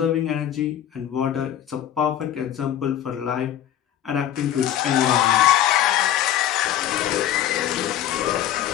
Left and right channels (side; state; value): right; quieter; 11.3 dB